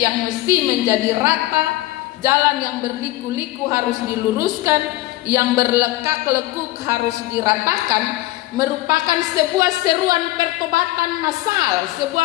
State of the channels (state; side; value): quieter; right; 17.7 dB